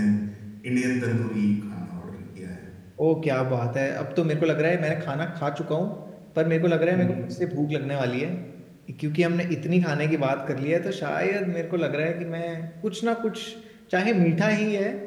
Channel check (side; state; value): both; identical; correlation 1.00